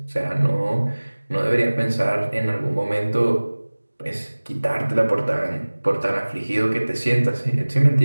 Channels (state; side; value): inverted; both; correlation -1.00